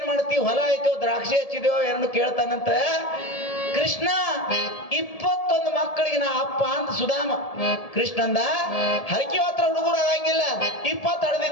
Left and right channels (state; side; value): late; right; 1.7 ms